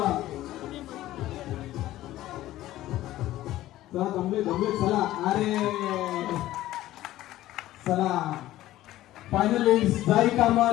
चला जमले. चला. अरे चला फायनलिस्ट साई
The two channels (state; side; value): quieter; right; 15.0 dB